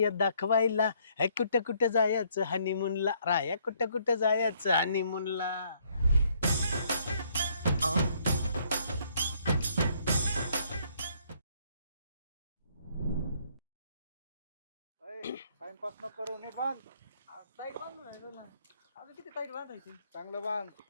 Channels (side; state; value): both; inverted; correlation -0.67